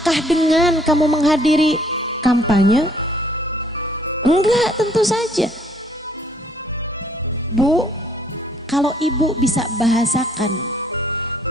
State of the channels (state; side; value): normal; both; correlation 0.63